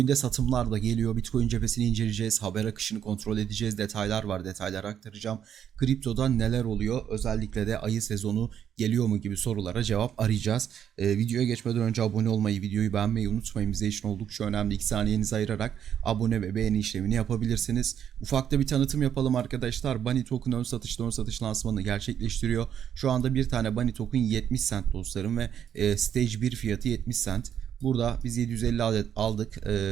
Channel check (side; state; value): left; quieter; 9.1 dB